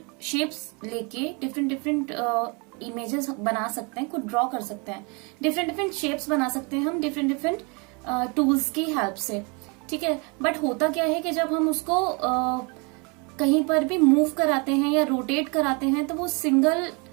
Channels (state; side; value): quieter; left; 31.6 dB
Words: शेप्स लेके डिफरेंट इमेजेस बना सकते हैं, कुछ ड्रॉ कर सकते हैं, डिफरेंट शेप्स बना सकते हैं हम डिफरेंट टूल्स की हेल्प से. ठीक है, बट होता क्या है कि जब हम उसको कहीं पर भी मूव कराते हैं या रोटेट कराते हैं तो वो सिंगल